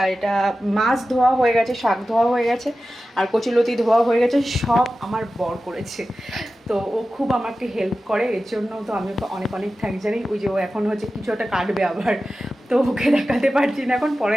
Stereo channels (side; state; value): both; normal; correlation 0.94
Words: এটা মাছ ধোয়া হয়ে গেছে, শাক ধোয়া হয়ে গেছে, আর কচুলতি ধোয়া হয়ে গেছে। সব আমার বর করেছে, তো ও খুব আমাকে হেল্প করে, এর জন্য তো আমি ওকে অনেক অনেক থ্যাঙ্কস জানি। ওই যে ও এখন হচ্ছে কিছু একটা কাটবে আবার, তো ওকে দেখাতে পারছি না, এখন